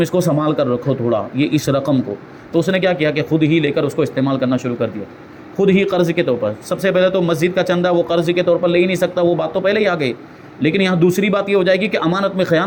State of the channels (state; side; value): identical; both; correlation 1.00